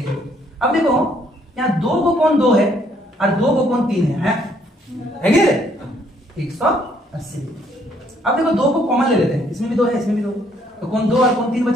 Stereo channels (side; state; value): both; normal; correlation 0.67